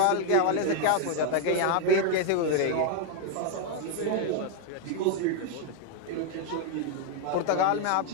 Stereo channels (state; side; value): different; both; correlation 0.01